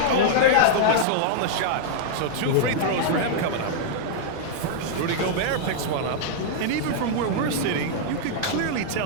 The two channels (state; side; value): different; both; correlation -0.01